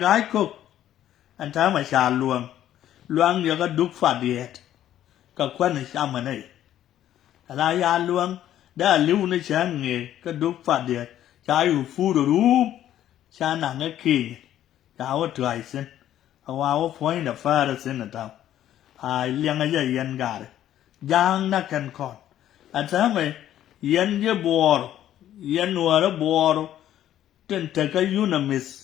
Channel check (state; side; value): quieter; right; 11.8 dB